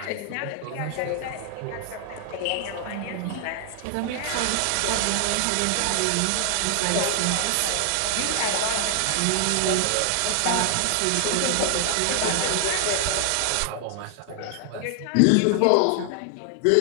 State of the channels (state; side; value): different; both; correlation 0.00